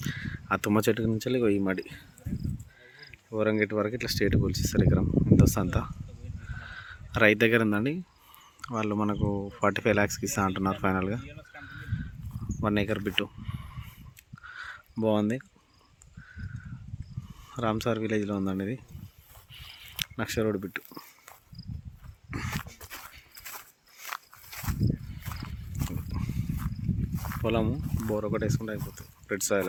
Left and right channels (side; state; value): both; identical; correlation 1.00